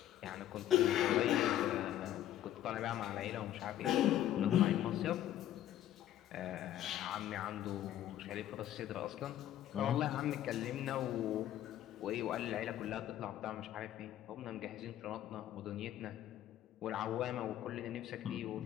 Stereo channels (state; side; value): quieter; right; 12.2 dB